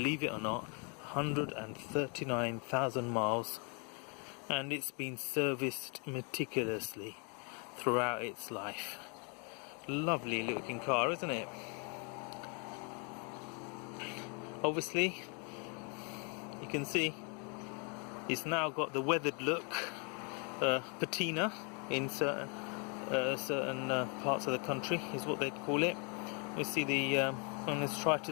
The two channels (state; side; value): quieter; right; 35.5 dB